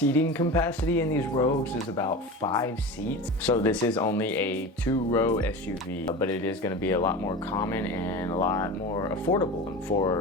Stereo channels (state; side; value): normal; both; correlation 0.30